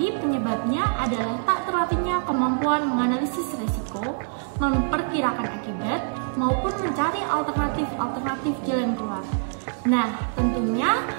penyebabnya adalah tak terlatihnya kemampuan menganalisis resiko, memperkirakan akibat, maupun mencari alternatif jalan keluar. Nah, tentunya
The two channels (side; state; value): left; silent; 62 dB below the other